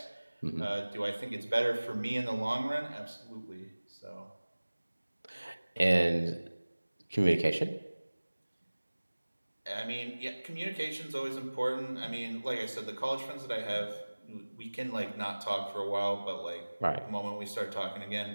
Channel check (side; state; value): both; inverted; correlation -1.00